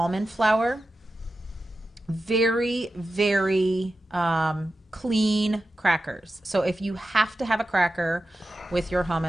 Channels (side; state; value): both; normal; correlation 0.92